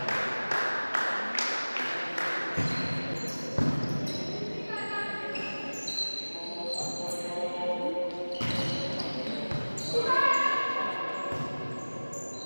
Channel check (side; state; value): both; inverted; correlation -1.00